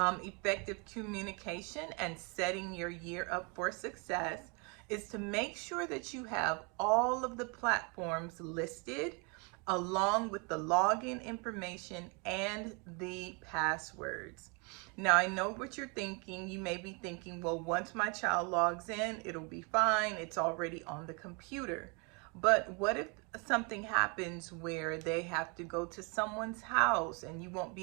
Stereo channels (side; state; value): left; quieter; 32.3 dB